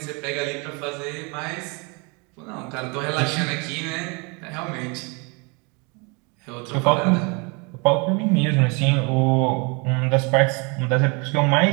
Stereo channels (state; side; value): quieter; left; 31.3 dB